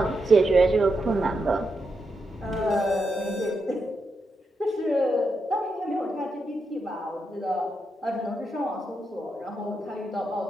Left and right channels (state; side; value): normal; both; correlation 0.84